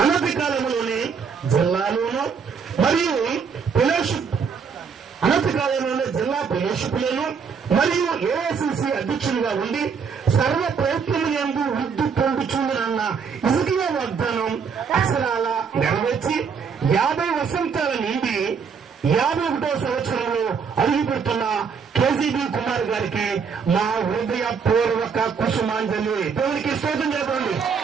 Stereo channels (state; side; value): quieter; left; 6.1 dB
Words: అనతి కాలంలోనే జిల్లాలోనూ మరియు ఫెలోషిప్ అనతి కాలంలోనే జిల్లా ఫెలోషిప్లను మరియు ఏఐసిసి అధ్యక్షునిగా ఉండి సర్వ ప్రయత్నము యందు వృద్ధి పొందుచుందనన్న ఇసుకీయ వాగ్దానం అక్షరాల నెరవేర్చి 50 వసంతాల నుండి 51వ సంవత్సరంలో అడుగుపెడుతున్న కేజీబీ కుమార్ గారికి మా హృదయపూర్వక కుసుమాంజలి. దేవునికి స్తోత్రం చెప్పండి.